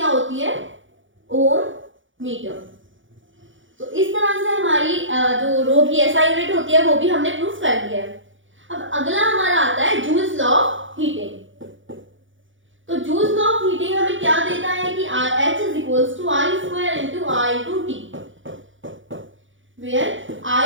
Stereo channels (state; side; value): late; left; 0.56 ms